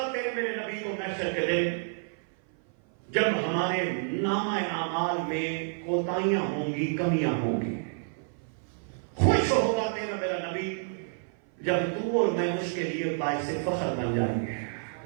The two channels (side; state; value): left; silent; 55 dB below the other